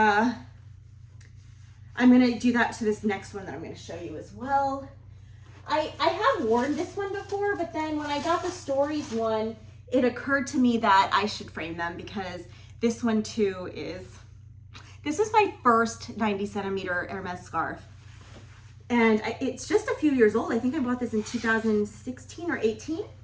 gonna do that to this next one that I'm gonna show you as well. I have worn this one before, but then when I got the Stories one, it occurred to me that I should frame them because this one too this was my first 90 centimeter Hermes scarf. And it's just a few years old. I think I bought this in 2016 or 18.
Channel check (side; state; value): both; identical; correlation 1.00